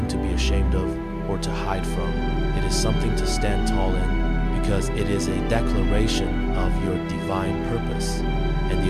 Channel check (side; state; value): both; identical; correlation 1.00